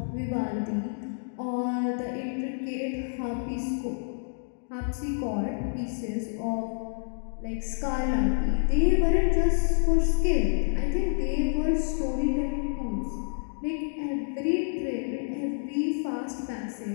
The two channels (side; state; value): right; silent; digital silence